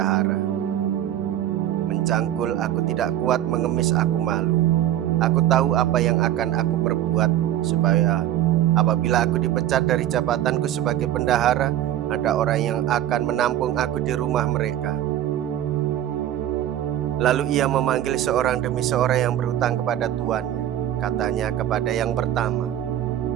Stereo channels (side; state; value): left; quieter; 12.1 dB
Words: Mencangkul aku tidak kuat, mengemis aku malu. Aku tahu apa yang akan aku perbuat, supaya apabila aku dipecat dari jabatanku sebagai bendahara, ada orang yang akan menampung aku di rumah mereka. Lalu ia memanggil seorang demi seorang yang berhutang kepada tuannya. Katanya kepada yang pertama,